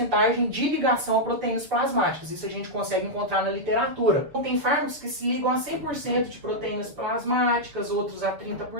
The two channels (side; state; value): left; late; 6.9 ms